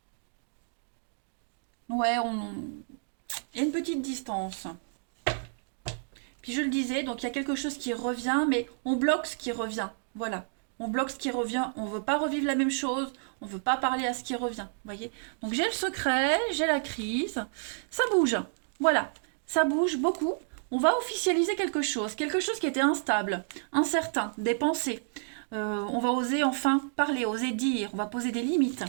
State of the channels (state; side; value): silent; left; digital silence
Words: Ouais, il y a une petite distance. Puis je le disais, donc il y a quelque chose qui revient, mais on bloque ce qui revient. Voilà. On bloque ce qui revient. On ne veut pas revivre la même chose. On ne veut pas parler à ce qui revient. Voyez. Donc j'ai le secret, j'ai la crise. Ça bouge. Voilà. Ça bouge beaucoup. On va officialiser quelque chose qui était instable, incertain, des pensées. On va oser enfin parler, oser dire, on va poser des limites.